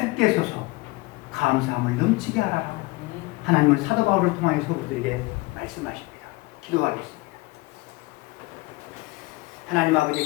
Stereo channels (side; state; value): right; quieter; 22.8 dB